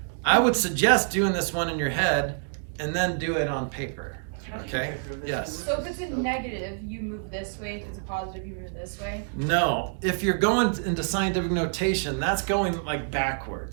I would suggest doing this one in your head and then do it on paper. Okay? Yes. So if it's a negative, you move this way. If it's a positive, you move this way. No, if you're going into scientific notation, that's going like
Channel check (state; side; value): silent; left; digital silence